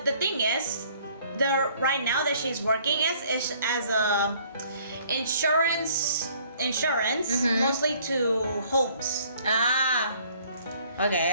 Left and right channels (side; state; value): both; inverted; correlation -0.59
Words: the thing is, right now that she's working is as a insurance, mostly to homes.